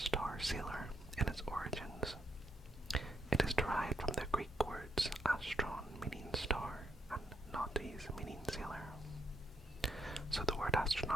sailor in its origins. It is derived from the Greek words astron meaning star and nautis meaning sailor. So the word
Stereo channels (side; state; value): both; normal; correlation 0.75